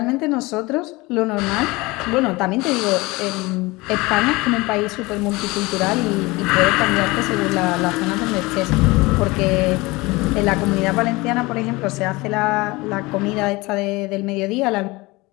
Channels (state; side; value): quieter; right; 22.7 dB